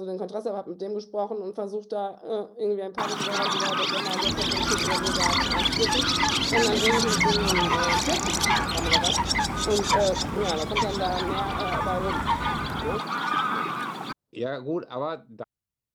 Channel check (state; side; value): identical; both; correlation 1.00